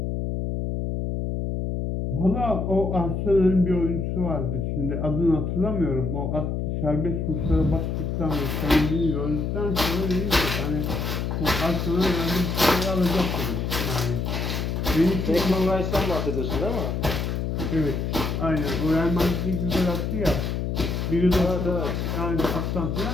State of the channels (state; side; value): noise; left; hum, 1 dB below the sound